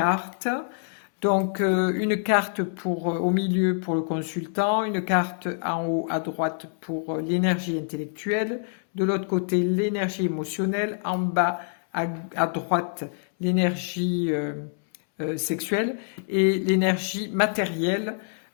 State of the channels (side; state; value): right; silent; 61 dB below the other